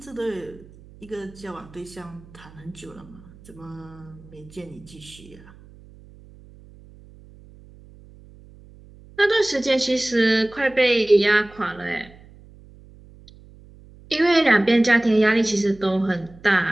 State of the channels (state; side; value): noise; right; hum, 23 dB below the sound